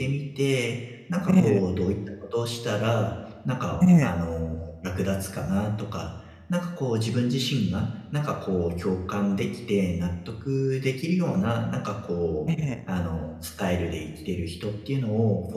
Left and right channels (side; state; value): both; identical; correlation 1.00